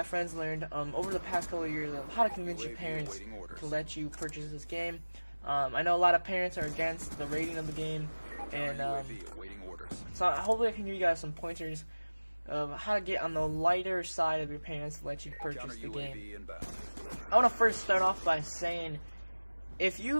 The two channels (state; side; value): inverted; both; correlation -1.00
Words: friends learned over the past couple of years of how to convince your parents to let you purchase this game. I know a lot of parents are against the rating of the game, and so hopefully I can give you guys some pointers of how to get on the lighter side of your parents to let you purchase the game. I want to first start off by saying, if